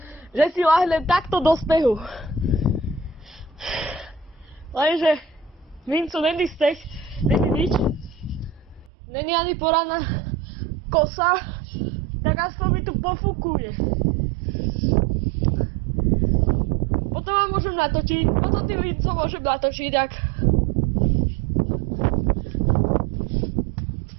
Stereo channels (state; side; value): drops out; left; at 8.9 s